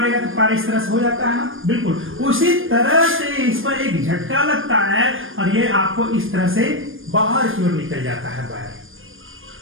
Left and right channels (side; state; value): left; late; 0.59 ms